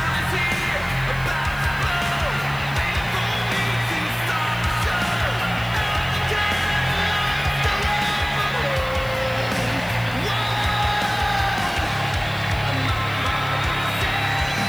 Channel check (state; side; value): noise; left; hiss, 20 dB below the sound